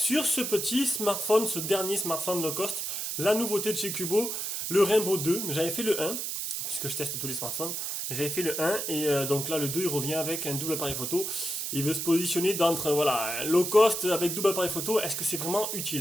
ce petit smartphone, ce dernier smartphone low cost. La nouveauté de chez Cubo, le Rainbow 2. J'avais fait le 1, puisque je teste tous les smartphones. J'avais fait le 1 et donc là le 2 il revient avec un double appareil photo. Il veut se positionner d'entre voilà, low cost avec double appareil photo. Est-ce que c'est vraiment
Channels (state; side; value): noise; right; hiss, 3 dB below the sound